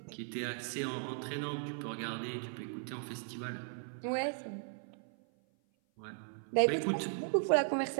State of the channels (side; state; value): left; silent; 53 dB below the other